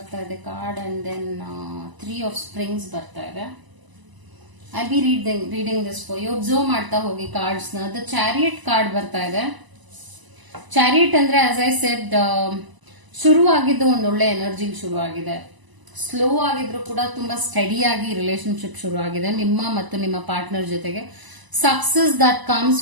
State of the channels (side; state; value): left; late; 1.0 ms